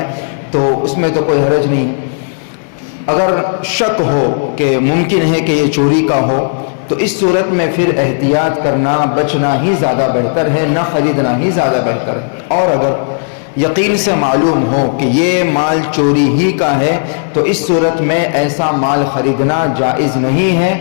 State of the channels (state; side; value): silent; right; digital silence